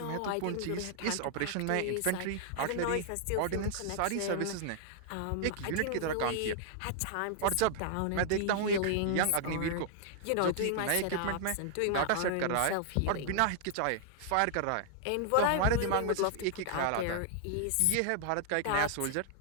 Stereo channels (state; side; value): different; both; correlation 0.00